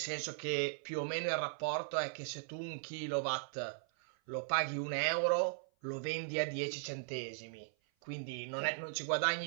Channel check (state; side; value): silent; left; 52 dB below the other